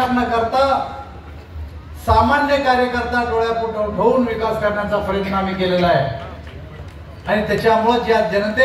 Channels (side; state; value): both; identical; correlation 1.00